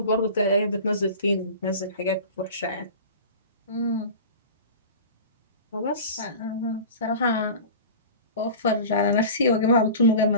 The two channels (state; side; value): inverted; both; correlation -0.35